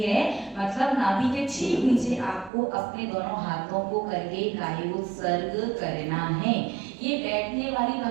मतलब नाभि के ठीक नीचे आपको अपने दोनों हाथों को करके कायोत्सर्ग करना है। ये बैठने वाली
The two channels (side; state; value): left; drops out; at 2.5 s